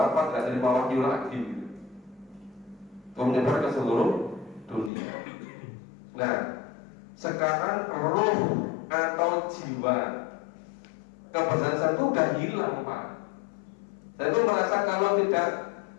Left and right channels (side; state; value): right; drops out; at 4.9 s